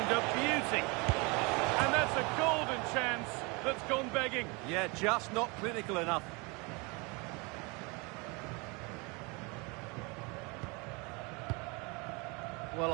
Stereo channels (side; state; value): left; quieter; 28.6 dB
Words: a beauty. And that's a golden chance that's gone begging. Yeah, just not clinical enough. Well,